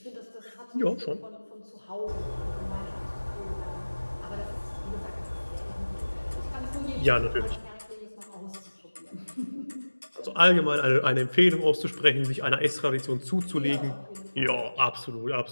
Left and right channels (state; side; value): inverted; both; correlation -1.00